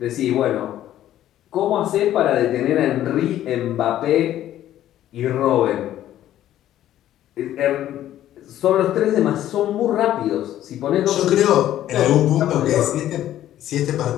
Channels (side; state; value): right; quieter; 12.5 dB